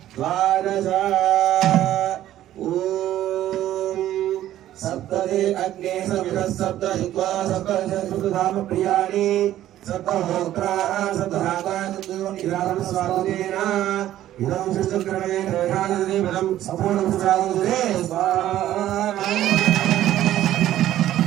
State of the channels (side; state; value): left; quieter; 13.0 dB